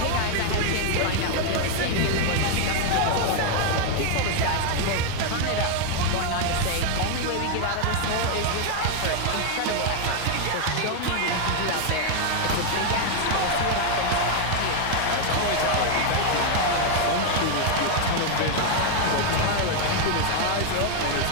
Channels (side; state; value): both; different; correlation 0.01